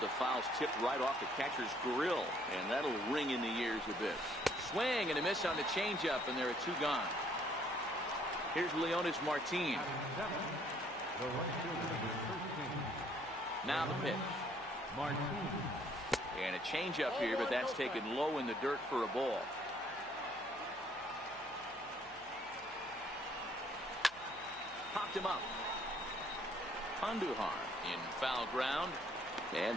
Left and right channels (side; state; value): left; noise; hum, 27 dB below the sound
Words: the foul's tipped right off the catcher's grill, and that'll ring in the ears a bit. Swing and a miss on the changeup, and there are 2 gone. Here's Leonis Martin. Now the pitch. And a changeup here, but that's taken low in the dirt for a ball. Popped him up. Andujar in foul ground. And